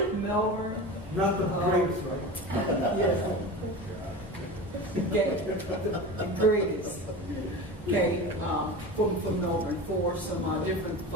Melbourne. Not the greatest, right? Yes. Okay, the greatest. Okay, from Melbourne, for some different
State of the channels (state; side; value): normal; both; correlation 0.30